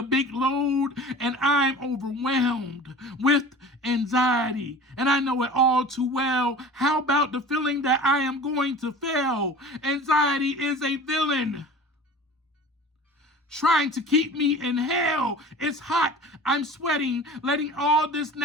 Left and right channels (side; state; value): both; normal; correlation 0.39